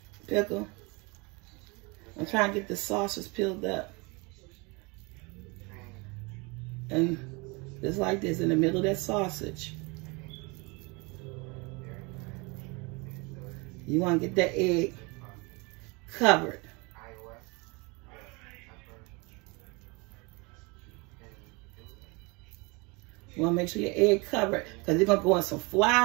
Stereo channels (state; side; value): quieter; left; 27.9 dB